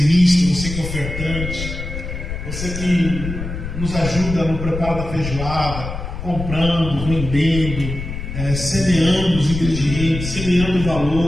você que é ofertante, você que nos ajuda no preparo da feijoada, comprando, vendendo, semeando os ingredientes, semeando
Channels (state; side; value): noise; left; rumble, 7 dB below the sound